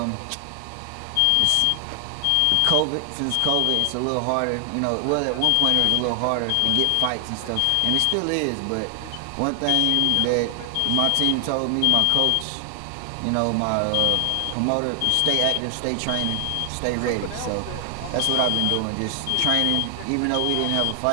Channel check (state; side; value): different; both; correlation 0.00